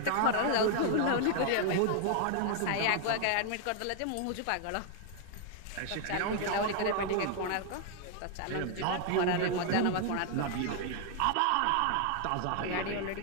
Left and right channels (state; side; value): different; both; correlation 0.00